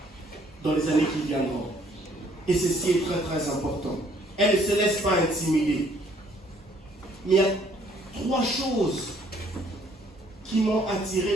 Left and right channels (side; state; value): both; normal; correlation 0.63